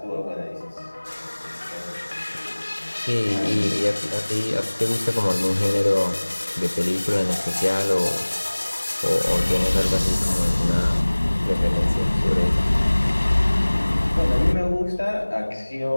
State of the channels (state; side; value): inverted; both; correlation -1.00